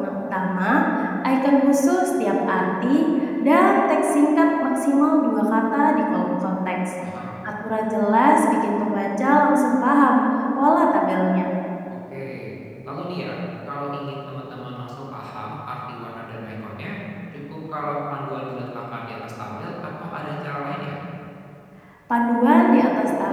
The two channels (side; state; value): both; identical; correlation 1.00